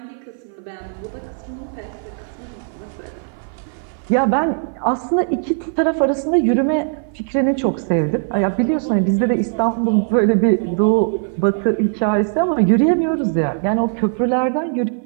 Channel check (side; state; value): left; silent; 56 dB below the other